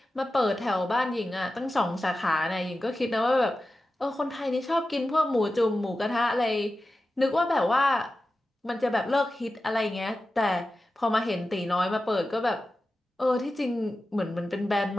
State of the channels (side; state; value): both; normal; correlation 0.93